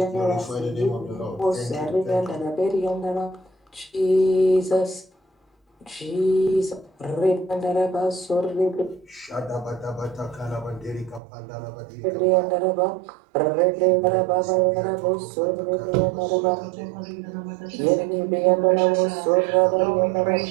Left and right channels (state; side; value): drops out; left; at 11.2 s